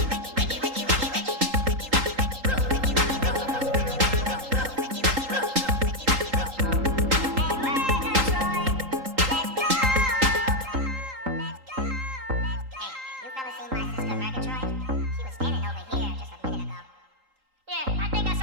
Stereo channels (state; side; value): late; left; 3.8 ms